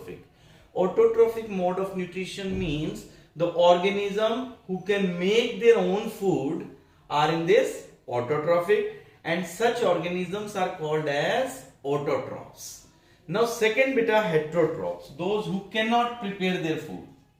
Autotrophic mode of nutrition means the organism who can make their own food are in this autotrophic, and such organisms are called as autotrophs. Now second beta, heterotrophs, those who cannot prepare their food,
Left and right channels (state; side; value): identical; both; correlation 1.00